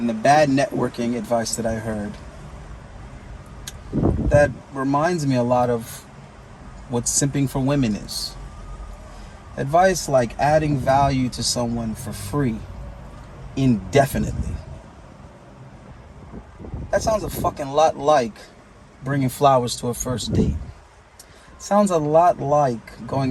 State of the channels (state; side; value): identical; both; correlation 1.00